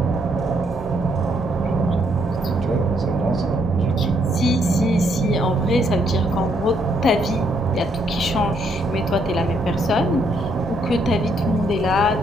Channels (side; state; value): both; normal; correlation 0.72